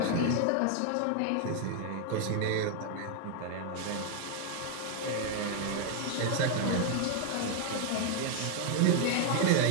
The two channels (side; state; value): both; different; correlation 0.00